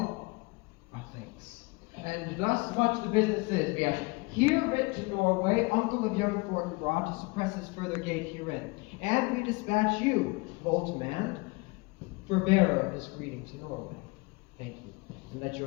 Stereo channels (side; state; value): right; quieter; 26.4 dB